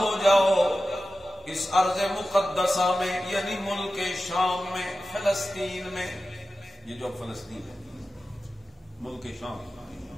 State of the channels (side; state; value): both; normal; correlation 0.93